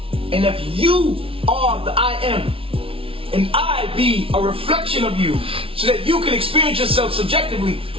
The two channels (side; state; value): left; late; 0.26 ms